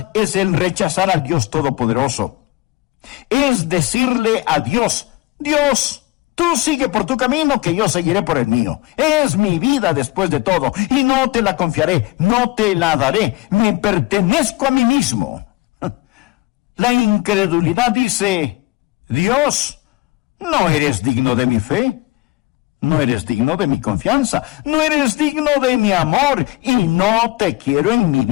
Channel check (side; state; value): right; quieter; 20.8 dB